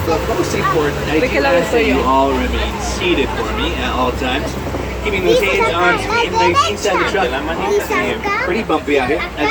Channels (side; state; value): both; identical; correlation 1.00